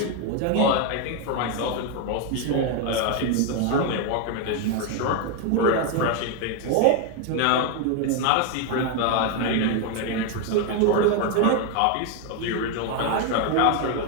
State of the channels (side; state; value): both; different; correlation 0.01